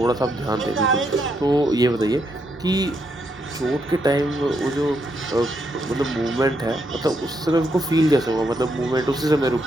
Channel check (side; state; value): both; normal; correlation 0.78